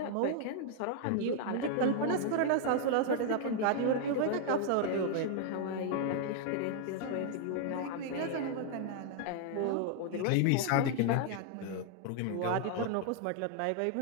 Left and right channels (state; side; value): different; both; correlation 0.00